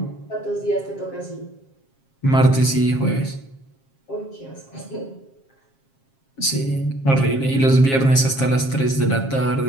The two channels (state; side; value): late; right; 7.5 ms